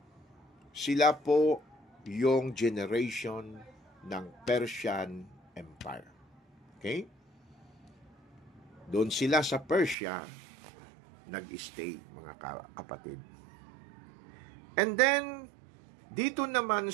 sila po yung generation ng Persian Empire. Okay? Doon sila sa Persia nag-stay, mga kapatid. And then, dito naman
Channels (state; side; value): drops out; left; at 10.0 s